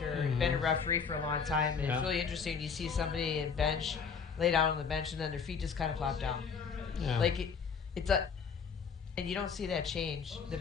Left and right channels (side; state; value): right; quieter; 6.0 dB